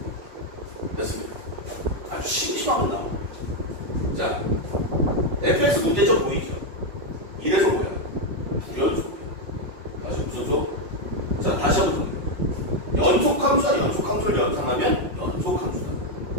fx 문제점 보이죠? 이래서 뭐야? 불연속이야. 다시 무슨 속? 자, 다시 한번 봅니다. 연속함수와 연속함수를 연산하면 연속함수다.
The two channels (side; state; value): left; late; 5.4 ms